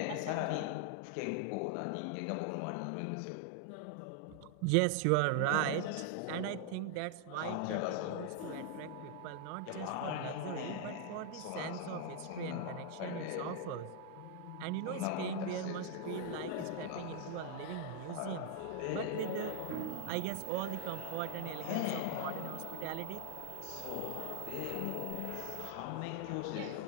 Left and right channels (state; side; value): different; both; correlation 0.00